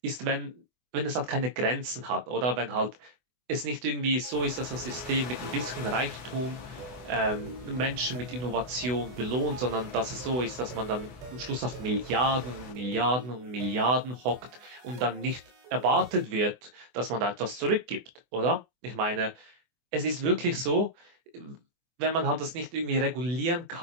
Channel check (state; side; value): late; left; 24 ms